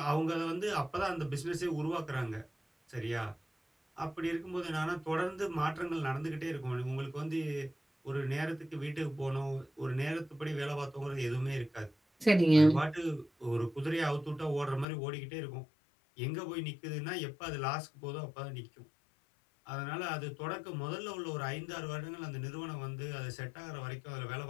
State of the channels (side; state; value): right; drops out; at 14.9 s